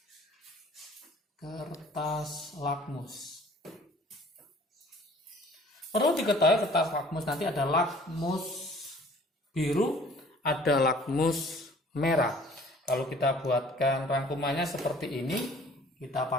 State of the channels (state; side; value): normal; both; correlation 0.52